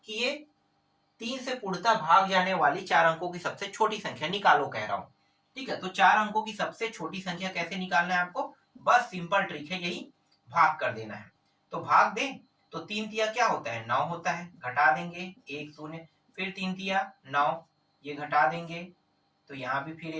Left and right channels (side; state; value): both; identical; correlation 1.00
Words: कि ये 3 से पूर्णतः भाग जाने वाली 4 अंकों की सबसे छोटी संख्या निकालो कह रहा हूं। ठीक है, तो 4 अंकों की सबसे छोटी संख्या कैसे निकालना है आपको? बस सिंपल ट्रिक है, यही भाग कर देना है। तो भाग दें तो 3 तिया क्या होता है? 9 होता है। घटा देंगे 1 शून्य, फिर 3 तिया 9, ये घटा देंगे तो यहाँ भी फिर